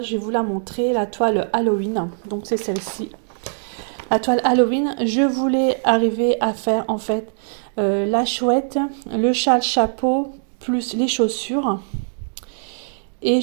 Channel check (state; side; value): silent; left; digital silence